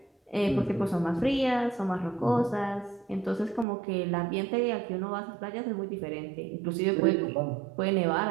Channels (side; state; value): left; drops out; at 3.7 s